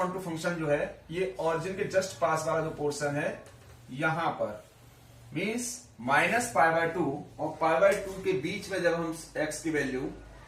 टू फंक्शन जो है ये ऑरिजिन के जस्ट पास वाला जो पोर्शन है यहां पर मीन्स -π/2 और π/2 के बीच में जब हम x की वैल्यू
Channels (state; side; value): identical; both; correlation 1.00